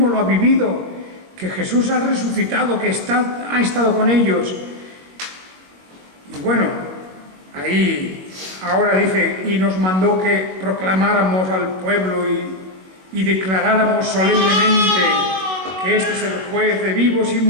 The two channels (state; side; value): late; left; 21 ms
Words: lo ha vivido, que Jesús ha resucitado, que ha estado con ellos. Y bueno, ahí ahora dice, y nos mandó que proclamáramos al pueblo y declaráramos solemnemente que este es el juez de vivos y